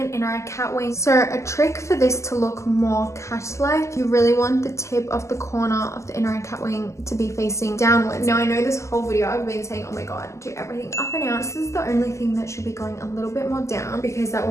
inner eye cat wing. So a trick for this to look more cat-like, you really want the tip of the corner of the inner eye cat wing to be facing downwards. Now I know this whole video I've been saying, oh my god, do everything up and out. This is the only thing that should be going a little bit more down because that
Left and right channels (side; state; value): right; late; 0.14 ms